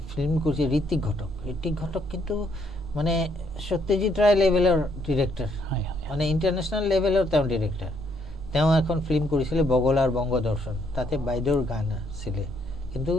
ফিল্ম কৰিছে ঋত্বিক ঘটক কিন্তু মানে সত্যজিৎ ৰায় লেভেলৰ ডিৰেক্টৰ মানে ইণ্টাৰনেশ্যনেল লেভেলৰ তেওঁ ডিৰেক্টৰ তেওঁ এখন ফিল্ম কৰিছিলে বগলাৰ বংগদৰ্শন তাতে বাইদেউৰ গান আছিলে কিন্তু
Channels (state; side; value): normal; both; correlation 0.71